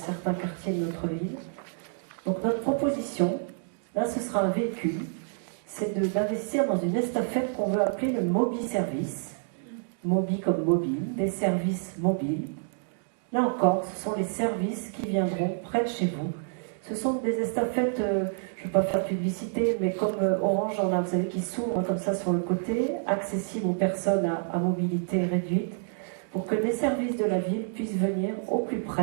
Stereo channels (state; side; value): silent; left; digital silence